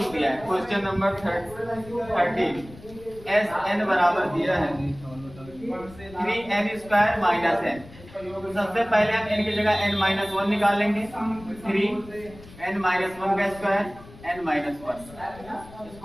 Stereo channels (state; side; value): noise; left; rumble, 19 dB below the sound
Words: दिया है। Question number 13। एस n बराबर दिया है 3n स्क्वायर माइनस n। सबसे पहले हम n की जगह n माइनस 1 निकाल लेंगे। 3n माइनस 1 का स्क्वायर n माइनस 1।